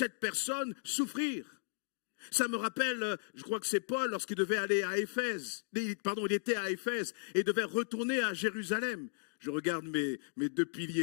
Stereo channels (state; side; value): silent; right; digital silence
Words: personne souffrir. Ça me rappelle, je crois que c'est Paul, lorsqu'il devait aller à Éphèse, il était à Éphèse et devait retourner à Jérusalem. Je regarde mes 2